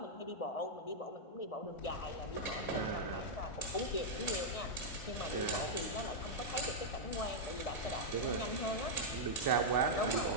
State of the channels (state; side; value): late; right; 1.7 ms